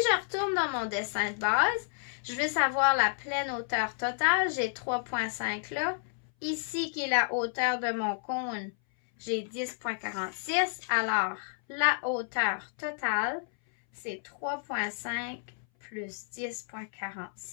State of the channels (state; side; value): silent; right; 57 dB below the other